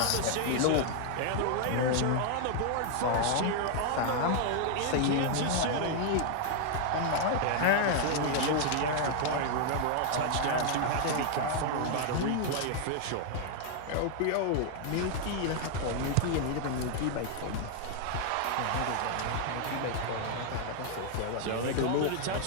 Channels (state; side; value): different; both; correlation 0.00